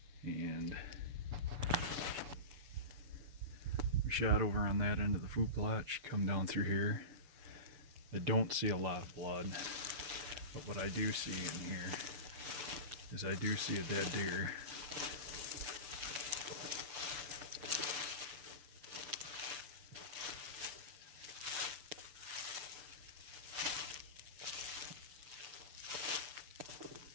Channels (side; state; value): left; late; 6.9 ms